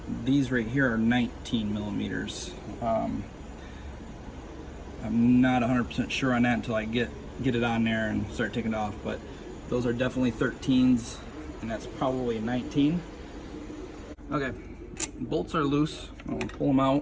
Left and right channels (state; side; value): identical; both; correlation 1.00